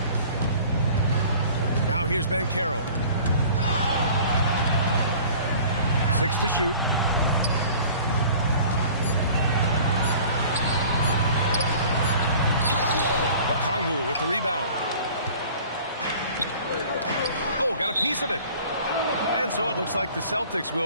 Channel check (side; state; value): both; inverted; correlation -0.46